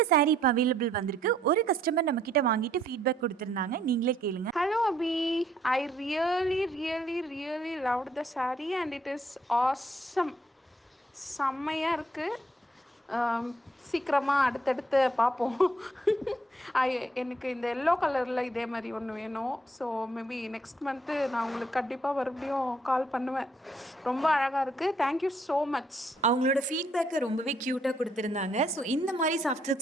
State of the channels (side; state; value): both; normal; correlation 0.68